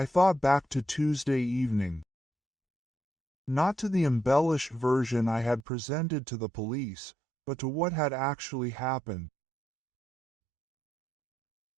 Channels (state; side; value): drops out; left; at 5.6 s